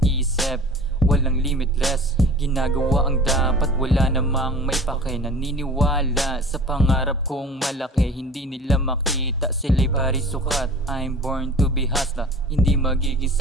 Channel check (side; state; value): both; normal; correlation 0.42